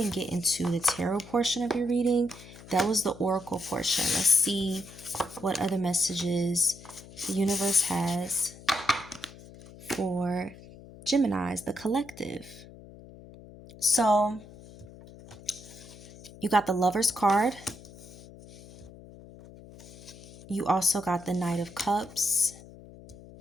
get into the tarot portion of your reading. That was the oracle portion. Let's see what other messages the universe has for Geminis, the collective. So you got the Lover's card. You also got the Knight of Cups,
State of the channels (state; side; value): noise; left; hum, 18 dB below the sound